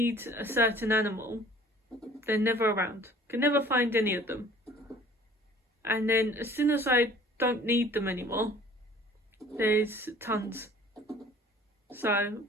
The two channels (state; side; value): normal; both; correlation 0.51